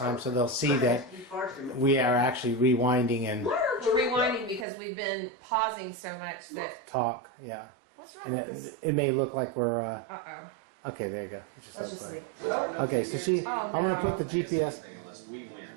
so they'll see that we are actually rewinding and We're rewinding because we've been pausing so much that. talk. Yeah, What's wrong and with this? it may look like we're. Uh-oh. Okay, there you go. It just Let's looks just like. leave it. Okay, so Oh, I'm gonna put the GPS. Unless we win.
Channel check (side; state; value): left; drops out; at 4.7 s